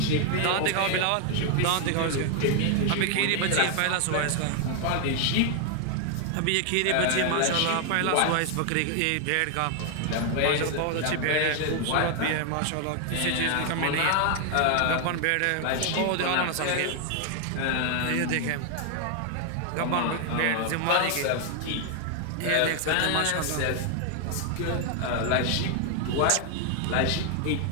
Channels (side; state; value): both; different; correlation 0.00